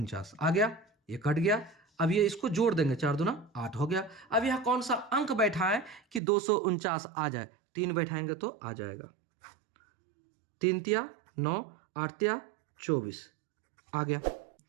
आ गया, ये कट गया। अब ये इसको जोड़ देंगे, 4 दूना 8 हो गया। अब यह कौन सा अंक बैठा है कि 249 आ जाए? 3 बैठाएंगे तो आ जाएगा, 3 तिया 9, 8 तिया 24 आ गया,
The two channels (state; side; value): drops out; left; at 6.2 s